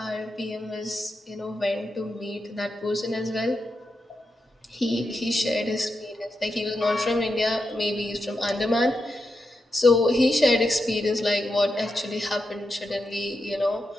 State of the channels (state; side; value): normal; both; correlation 0.87